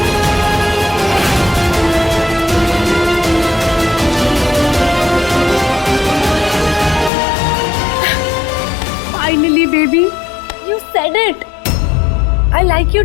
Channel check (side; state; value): right; drops out; at 7.1 s